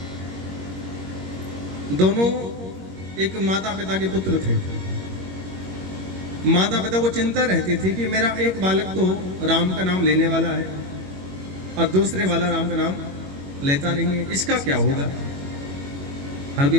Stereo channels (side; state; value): left; late; 21 ms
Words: दोनों एक माता पिता के पुत्र थे। माता पिता को चिंता रहती थी कि मेरा एक बालक तो राम का नाम लेने वाला है और दूसरे वाला राम का नाम लेता नहीं है, इसका क्या होगा। हर कोई